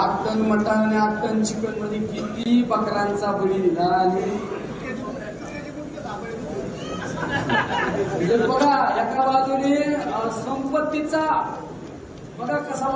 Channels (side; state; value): both; identical; correlation 1.00